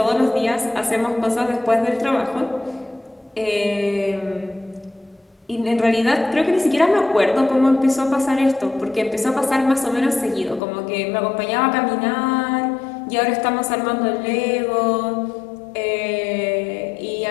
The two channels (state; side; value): drops out; right; at 10.6 s